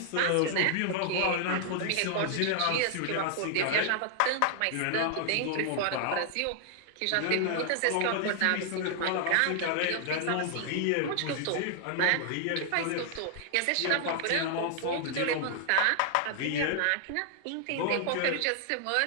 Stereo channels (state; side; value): different; both; correlation 0.00